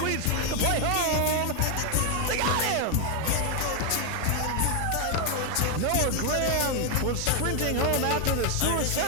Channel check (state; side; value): different; both; correlation 0.01